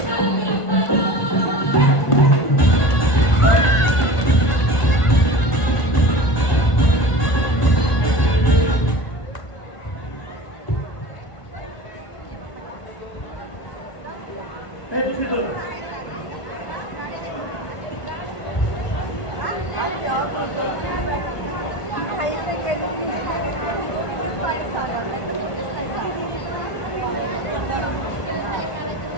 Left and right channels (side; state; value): right; late; 1.4 ms